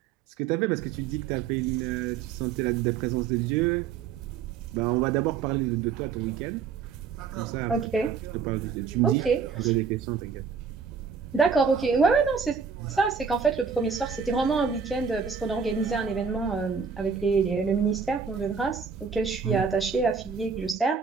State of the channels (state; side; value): quieter; left; 6.0 dB